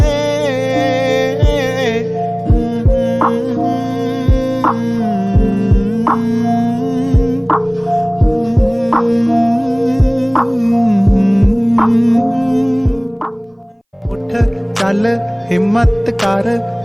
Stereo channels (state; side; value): identical; both; correlation 1.00